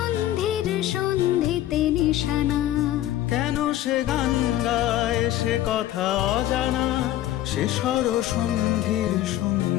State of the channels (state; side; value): quieter; right; 13.5 dB